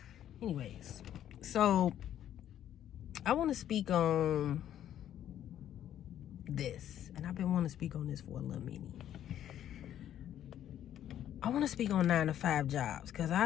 Anyways, so I want to speak on this, and I've been wanting to speak on this for a little minute. I want to speak on 9-to-5 jobs because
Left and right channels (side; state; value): right; quieter; 11.0 dB